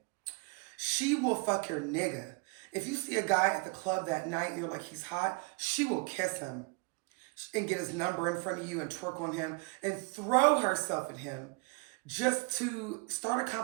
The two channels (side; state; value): left; quieter; 32.2 dB